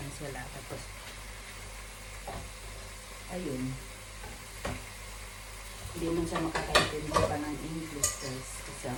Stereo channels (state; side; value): identical; both; correlation 1.00